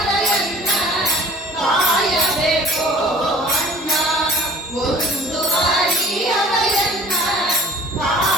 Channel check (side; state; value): both; normal; correlation 0.47